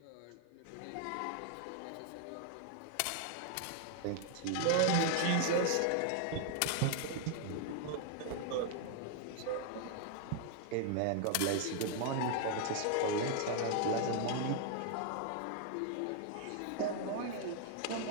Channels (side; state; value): both; different; correlation 0.00